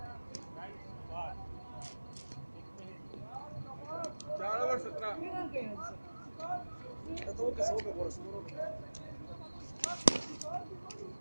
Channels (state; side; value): inverted; both; correlation -1.00